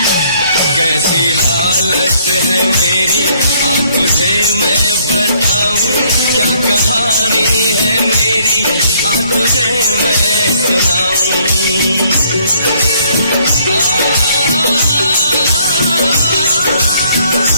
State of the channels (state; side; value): inverted; both; correlation -0.65